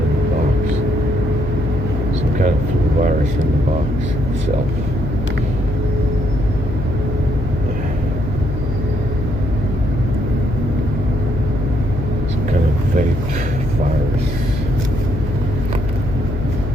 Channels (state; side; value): noise; left; hum, 4 dB below the sound